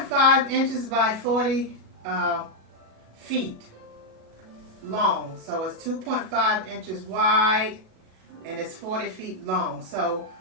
inches by 40 feet long. So it's 2.5 inches wide and it's 40 feet long. So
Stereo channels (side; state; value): left; late; 36 ms